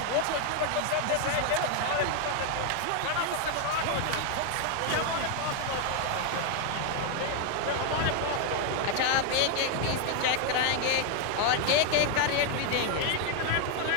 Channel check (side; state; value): both; different; correlation 0.01